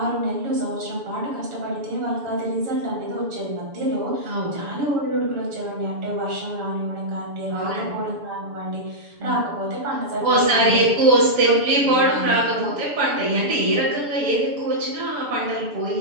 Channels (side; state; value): left; late; 6.9 ms